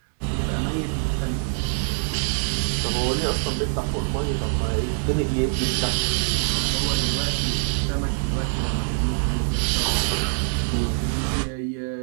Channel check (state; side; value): silent; left; digital silence